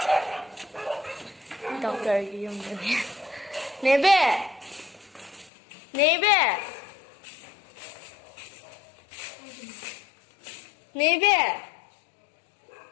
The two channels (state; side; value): drops out; right; at 5.5 s